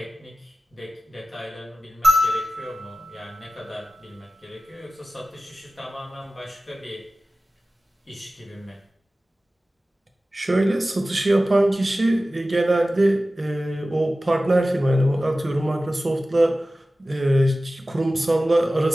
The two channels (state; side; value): normal; both; correlation 0.96